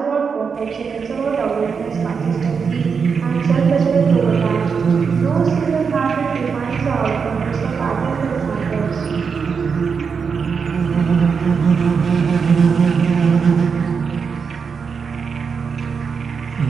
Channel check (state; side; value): quieter; left; 5.9 dB